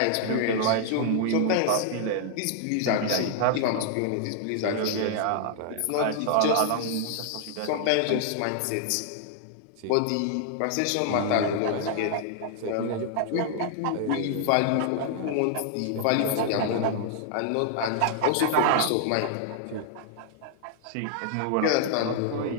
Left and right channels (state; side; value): different; both; correlation -0.01